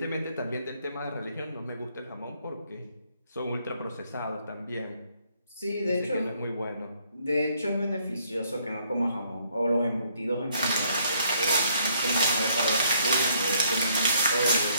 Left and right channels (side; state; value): both; inverted; correlation -0.68